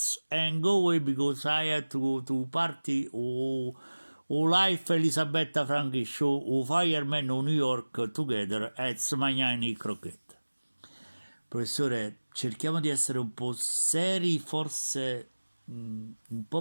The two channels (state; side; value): inverted; both; correlation -1.00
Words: and go away because I had to party life Elisabetta Franchi show Fireman o New York together at Smagnani Croquette. Professore, cerchiamo di essere un po' seri, forse un